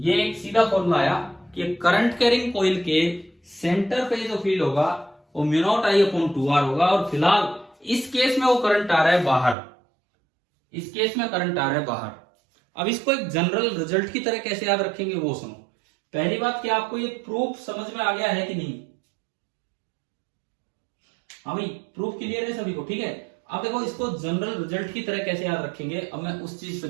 एक सीधा फॉर्मूला आया कि करंट कैरिंग कॉइल के सेंटर पे जो फील्ड होगा वो mu not I upon 2 R होगा। और फिलहाल इस केस में वो करंट आ रहा है बाहर, इस केस में करंट आ रहा है बाहर। अब इसको एक जनरल रिजल्ट की तरह कैसे याद रखेंगे वो सुनो। पहली बात, क्या आपको ये प्रूफ समझ में आ गया है कि नहीं? हाँ भाई, प्रूफ क्लियर है सभी को? ठीक है। अब देखो इसको जनरल रिजल्ट की तरह कैसे याद रखेंगे, अब मैं उस चीज पे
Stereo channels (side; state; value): left; drops out; at 9.6 s